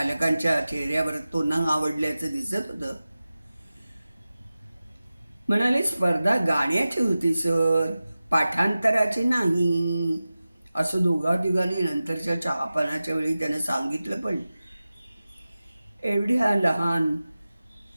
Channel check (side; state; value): both; inverted; correlation -0.95